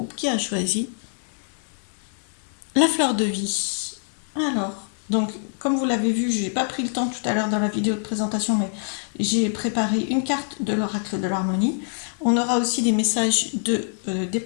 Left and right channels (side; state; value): right; silent; 62 dB below the other